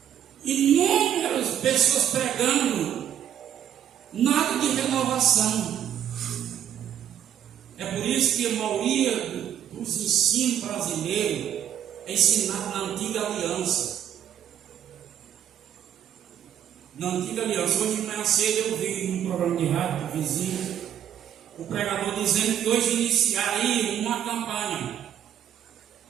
inúmeras pessoas pregando, nada de renovação. É por isso que a maioria dos ensinos brasileiros é ensinado na antiga aliança. Na antiga aliança, hoje de manhã cedo eu vi num programa de rádio do vizinho, o pregador dizendo que hoje iniciaria uma campanha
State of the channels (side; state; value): left; quieter; 10.0 dB